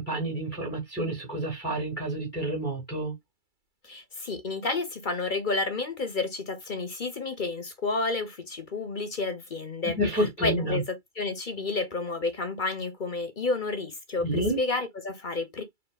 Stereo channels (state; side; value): late; right; 2.3 ms